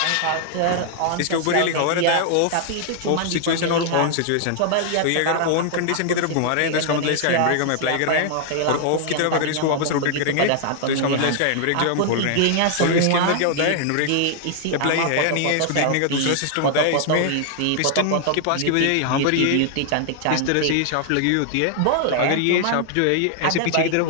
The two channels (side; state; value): both; different; correlation 0.00